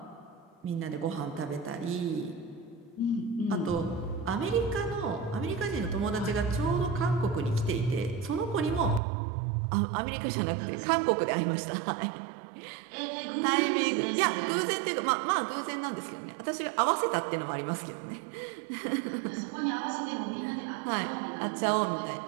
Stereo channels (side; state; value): left; drops out; at 9.0 s